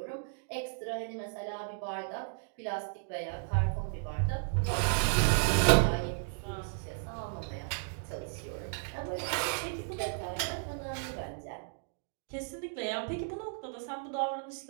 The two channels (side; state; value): left; silent; digital silence